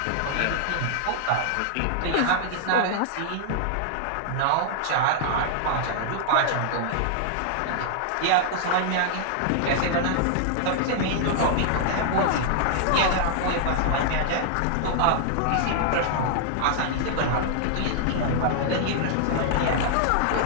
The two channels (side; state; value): both; different; correlation -0.01